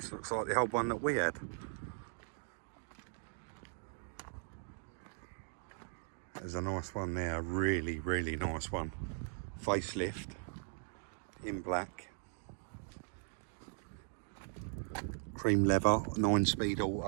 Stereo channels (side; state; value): left; silent; 52 dB below the other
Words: looks like the old one that we had. There's a nice one there, really, really nice one. Facelift, in black. Cream leather, 9-speed